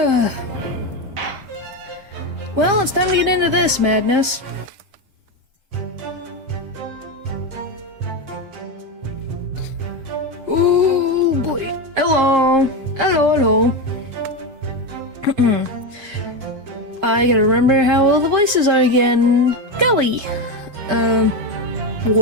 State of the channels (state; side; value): late; left; 7.5 ms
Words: Well, it's time to get into this madness. Oh boy. Hello. I gotta remember how all the voices are again. Golly.